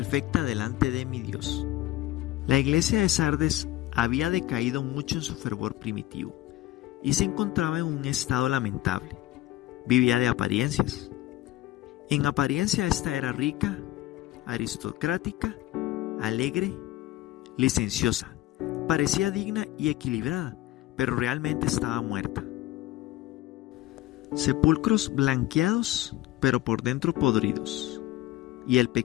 delante de mi Dios. La iglesia de Sardes había decaído mucho en su fervor primitivo y se encontraba en un estado lamentable. Vivía de apariencias. En apariencia esta era rica, aristocrática, alegre, licenciosa. Parecía digna y equilibrada, pero realmente estaba muerta. Sepulcros blanqueados, pero por dentro podridos, y el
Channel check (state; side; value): quieter; right; 15.9 dB